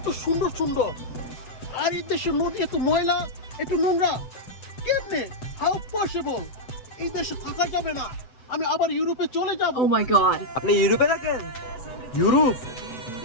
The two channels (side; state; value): right; late; 7.9 ms